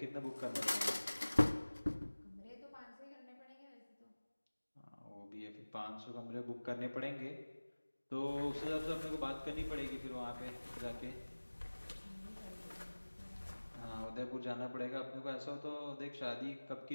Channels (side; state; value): both; inverted; correlation -1.00